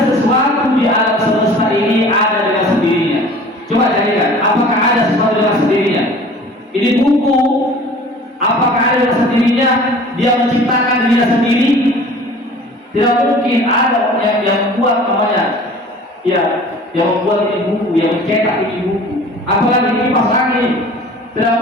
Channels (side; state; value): both; normal; correlation 0.45